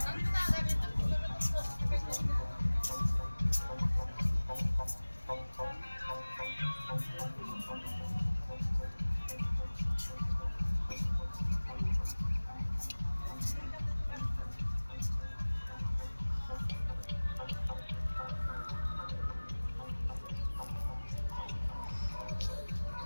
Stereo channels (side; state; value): both; inverted; correlation -1.00